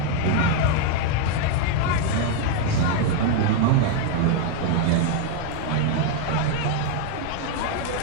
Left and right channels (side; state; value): both; different; correlation 0.01